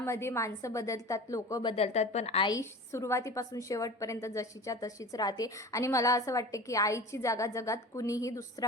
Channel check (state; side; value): normal; both; correlation 0.36